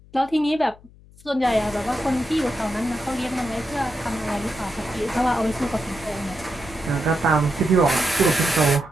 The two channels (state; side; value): noise; left; hum, 24 dB below the sound